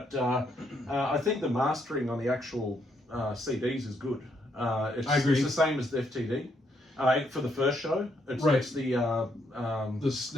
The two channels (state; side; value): normal; both; correlation 0.74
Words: I think the mastering on the actual CDs is good. I agree. It's the same as the FTD. For the first show, it's the